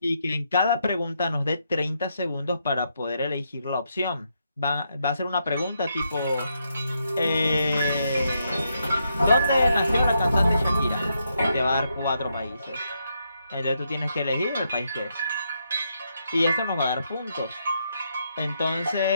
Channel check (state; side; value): inverted; both; correlation -0.79